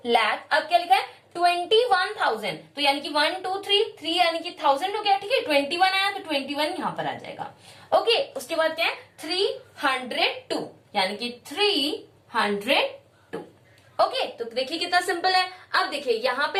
लाख अब क्या लिखा है 21,000। तो यानी कि 1 2 3 यानी कि 1000 हो गया। ठीक है 21 आया तो 21 यहाँ पर आ जाएगा। ओके उसके बाद क्या है 302 यानी कि 302। ओके तो देखिए कितना सिंपल है। अब देखिए यहाँ पे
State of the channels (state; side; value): identical; both; correlation 1.00